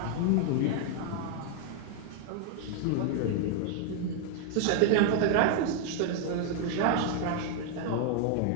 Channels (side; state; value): both; different; correlation 0.00